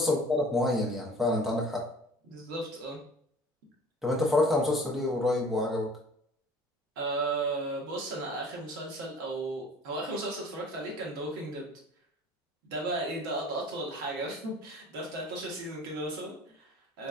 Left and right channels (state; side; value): normal; both; correlation 0.47